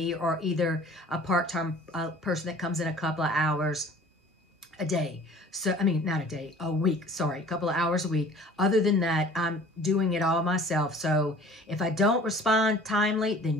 or either a part-time person that comes in a couple of hours a day. So, not a day, a week, sorry, a couple of hours a week. Other than that, I'm doing it all myself. So if I don't respond timely,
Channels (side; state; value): both; normal; correlation 0.48